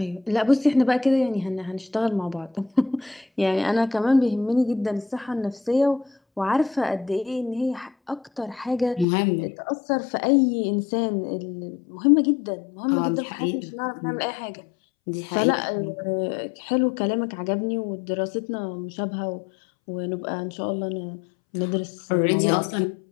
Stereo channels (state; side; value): drops out; right; at 9.1 s